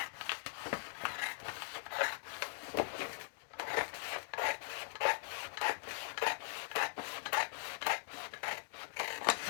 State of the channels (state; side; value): silent; right; digital silence